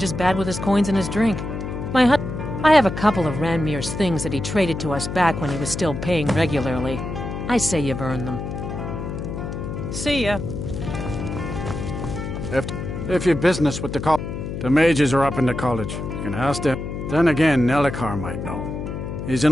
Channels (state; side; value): noise; left; hum, 6 dB below the sound